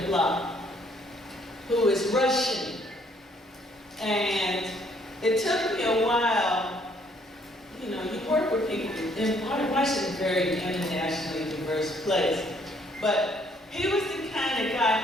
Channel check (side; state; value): both; normal; correlation 0.65